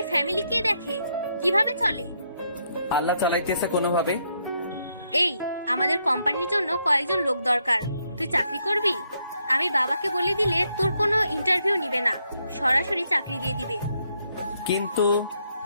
ফ্যামিলি কে দেখে, কিভাবে চলে? আল্লাহ চালাইতেছে কোনোভাবে। এই আমাদের কোম্পানির জন্য কয়েকজন লোক দরকার, তুই চাকরি করবি? আমি বাবাকে বলে দিলে তোর কোনো ইন্টারভিউ নিবে না, সরাসরি চাকরি দিয়ে দিবে।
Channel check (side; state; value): both; inverted; correlation -0.76